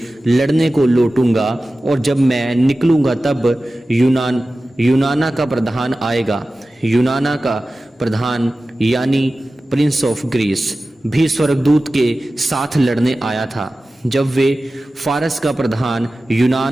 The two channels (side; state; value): both; normal; correlation 0.95